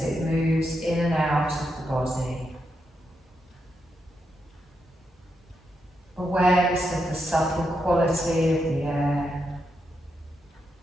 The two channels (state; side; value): normal; both; correlation 0.84